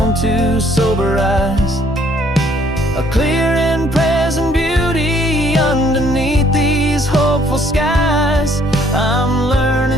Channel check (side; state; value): both; normal; correlation 0.64